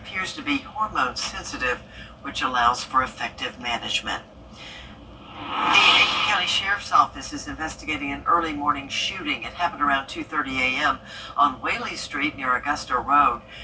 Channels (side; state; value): both; identical; correlation 1.00